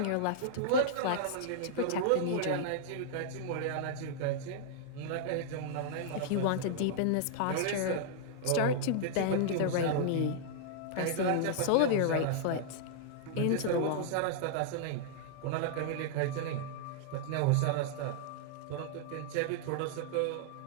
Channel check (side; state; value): both; different; correlation -0.01